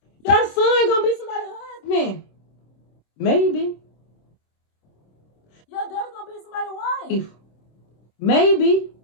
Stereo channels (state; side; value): late; right; 26 ms